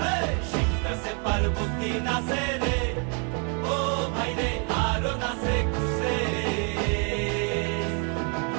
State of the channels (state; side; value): quieter; left; 37.9 dB